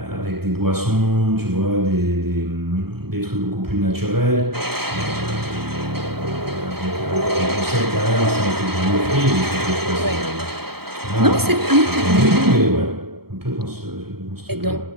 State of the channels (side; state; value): left; late; 0.95 ms